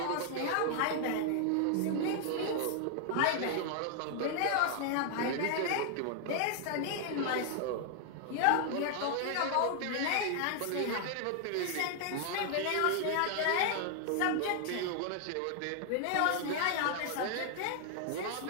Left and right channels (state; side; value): different; both; correlation 0.00